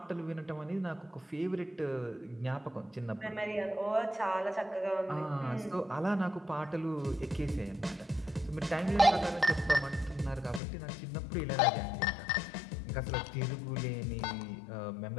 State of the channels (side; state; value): right; drops out; at 10.6 s